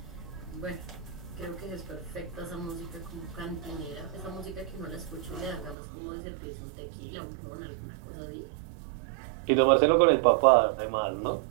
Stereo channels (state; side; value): drops out; left; at 5.8 s